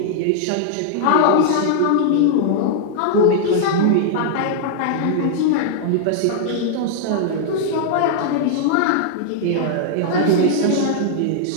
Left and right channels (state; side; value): different; both; correlation -0.01